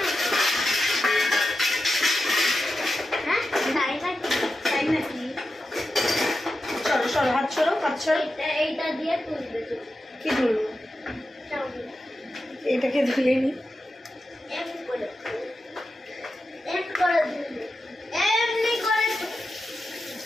হ্যাঁ, তাই নাকি? তাই নাকি? চলো সরো, হাত সরো, হাত সরো। এইটা দিয়ে তুলবে তো। কি ধরবো? চাউমিন এটাকে ধুয়ে নি। এমনি করে ধুলবে, এমনি করে।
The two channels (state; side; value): normal; both; correlation 0.90